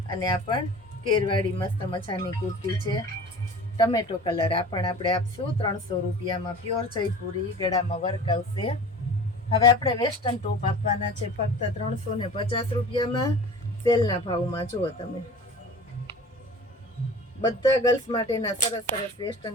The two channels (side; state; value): both; normal; correlation 0.40